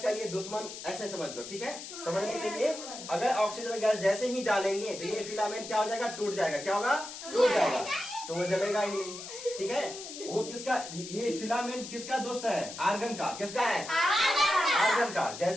का ये दुश्मन ऐसे समझ लो। ठीक है, समझने के लिए अगर ऑक्सीजन गैस जैसे ही डालेंगे तो ये फिलामेंट क्या हो जाएगा? टूट जाएगा। क्या होगा? टूट जाएगा, तो वो जलेगा ही नहीं। ठीक है, वो किसका, ये फिलामेंट किसका दोस्त है? आर्गन का। किसका है? आर्गन का।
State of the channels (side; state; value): left; noise; hiss, 11 dB below the sound